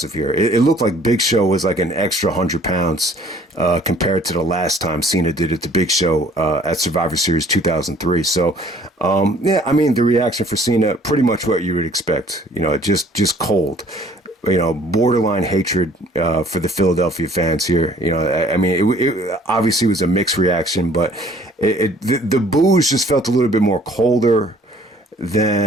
here. It looked like Big Show was like an extra 100 pounds compared to the last time Cena did it to Big Show at Survivor Series 2003. So, the reaction for Cena, pretty much what you would expect. Just cold. Borderline hatred for the Philadelphia fans here. It obviously was a mixed reaction, but the boos just felt a little bit more colder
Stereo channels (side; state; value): both; normal; correlation 0.56